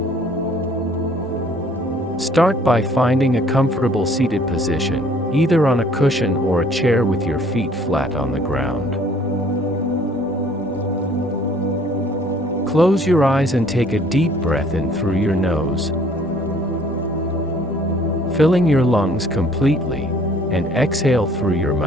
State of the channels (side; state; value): right; noise; rumble, 28 dB below the sound